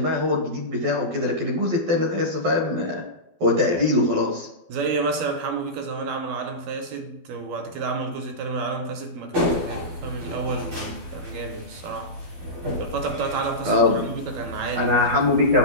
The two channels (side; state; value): left; late; 12 ms